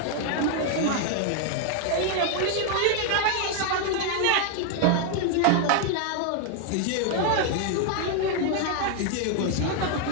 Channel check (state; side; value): different; both; correlation 0.00